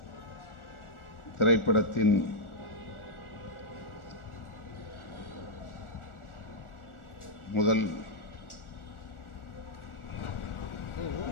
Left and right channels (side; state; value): right; late; 1.4 ms